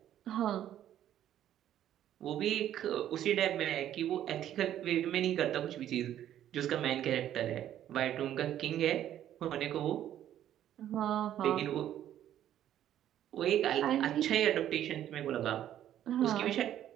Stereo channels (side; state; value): left; quieter; 11.5 dB